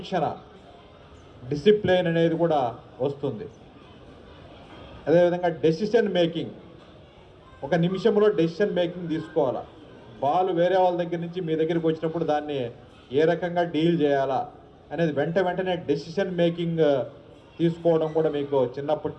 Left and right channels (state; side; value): identical; both; correlation 1.00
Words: డిసిప్లిన్ అనేది కూడా వస్తుంది. అదేవిధంగా డెసిషన్ మేకింగ్, ఒక నిమిషంలో డెసిషన్ మేకింగ్ తీసుకోవాలా. బాల్ వేరే వాళ్ళ దగ్గర నుంచి మీ దగ్గరికి వచ్చినప్పుడు దాన్ని ఏ రకంగా డీల్ చేయాలా అనేది వెంటనే డెసిషన్ మేకింగ్ తీసుకోవడం కూడా మీకు చిన్నప్పటి